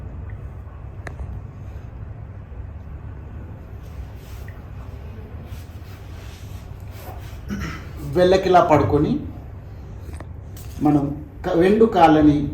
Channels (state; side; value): identical; both; correlation 1.00